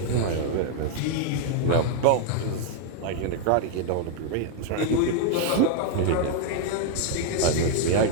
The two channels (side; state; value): both; different; correlation 0.00